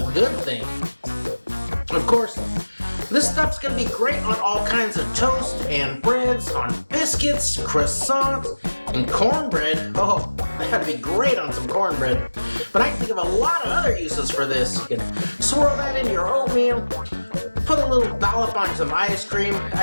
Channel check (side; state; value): both; inverted; correlation -1.00